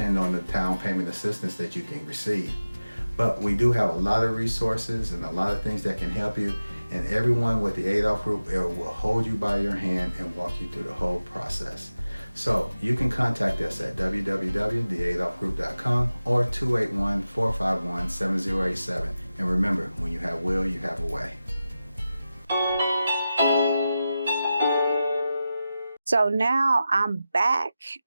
on the down payment assistance that you can receive. But we do have a lot of resources and a lot of things that can help you. And everyone with the Adolph Group will hold you by your hand and walk you through the whole process. So you can contact us at www.theadolfgroup.com or 281-451-7087. And remember, when you have will, you have a way. So now I'm back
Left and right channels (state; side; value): inverted; both; correlation -0.93